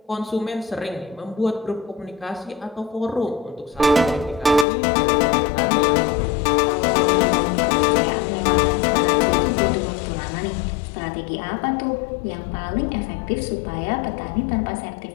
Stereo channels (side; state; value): right; drops out; at 4.7 s